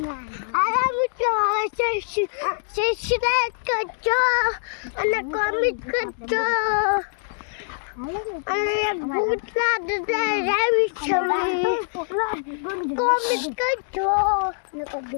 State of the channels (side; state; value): right; silent; digital silence